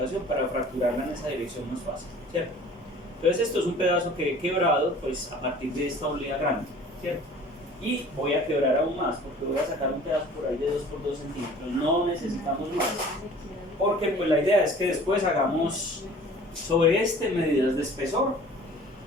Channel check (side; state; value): both; normal; correlation 0.47